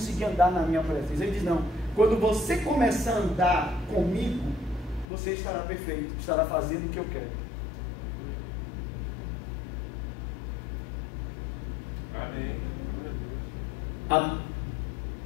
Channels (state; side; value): drops out; right; at 5.1 s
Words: andar na minha presença. Ele diz: não, quando você começar a andar comigo, você estará perfeito, estará fazendo o que eu quero. Amém.